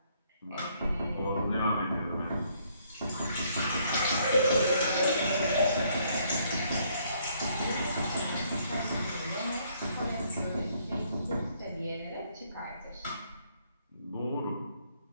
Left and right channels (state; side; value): inverted; both; correlation -0.68